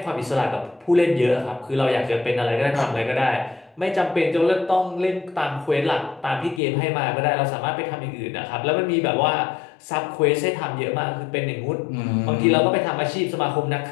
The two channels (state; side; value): drops out; right; at 6.6 s